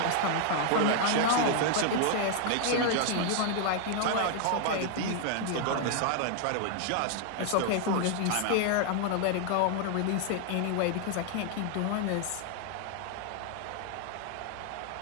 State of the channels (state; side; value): different; both; correlation 0.00